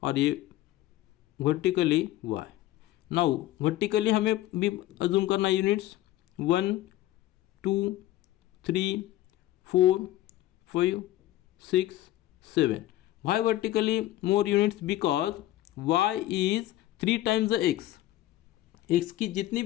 और ये वर्टिकली y। नाउ वर्टिकली हमें भी अज्यूम करना units 1 2 3 4 5 6 7। why vertically more units, because y is 3 times the x। x की जितनी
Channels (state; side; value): quieter; right; 15.1 dB